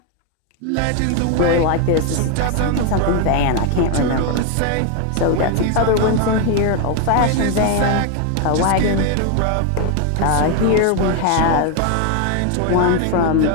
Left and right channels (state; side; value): different; both; correlation 0.01